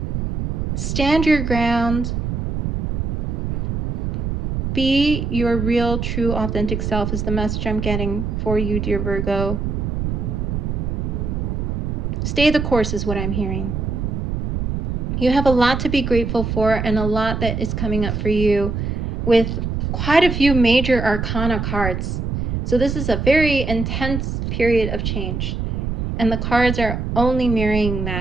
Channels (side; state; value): right; noise; rumble, 2 dB below the sound